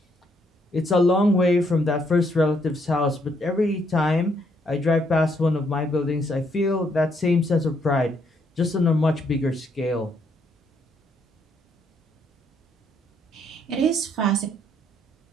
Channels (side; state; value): both; normal; correlation 0.72